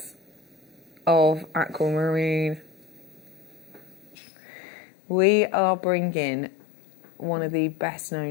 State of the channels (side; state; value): right; drops out; at 4.2 s